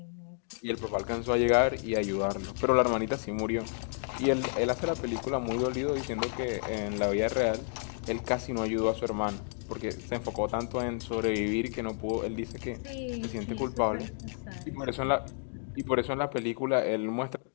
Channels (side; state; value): right; silent; digital silence